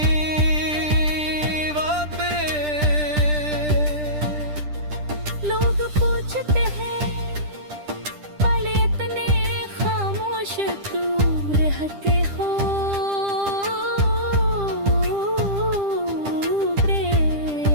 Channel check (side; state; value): left; late; 10 ms